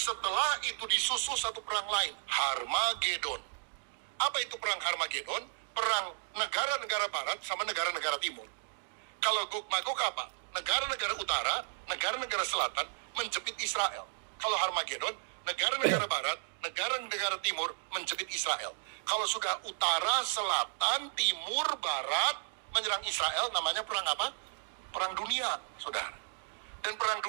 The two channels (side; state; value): left; silent; digital silence